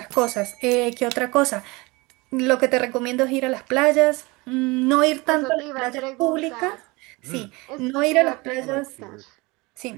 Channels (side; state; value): left; quieter; 24.4 dB